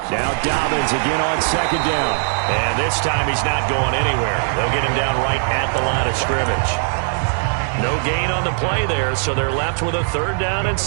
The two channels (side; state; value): left; silent; 66 dB below the other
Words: Now Dobbins again on 2nd down. And this time he's not going anywhere. They'll get him down right at the line of scrimmage. No gain on the play there, so they're left with a 3rd down and